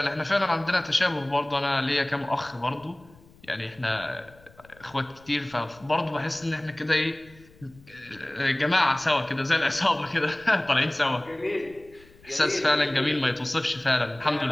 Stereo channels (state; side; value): noise; left; rumble, 26 dB below the sound